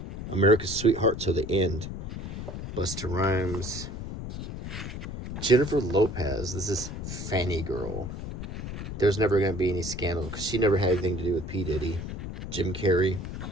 America's Sweetheart Till the End. Busta Rhymes. Jennifer Lopez, this is Fanny Girl. There's never going to be any scandal because she never had anything to do with P. Diddy. Jim Carrey.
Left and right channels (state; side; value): noise; left; rumble, 7 dB below the sound